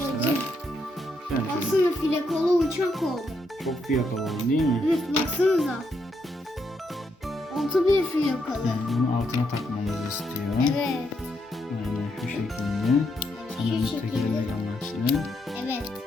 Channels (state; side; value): normal; both; correlation 0.78